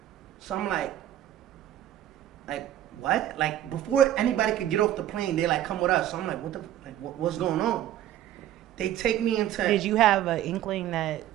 So I'm like, what? Like, before anybody could get off the plane, they like, come with us. So I'm like, what's going on? They take me into... Did you have an inkling that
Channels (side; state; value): left; quieter; 12.3 dB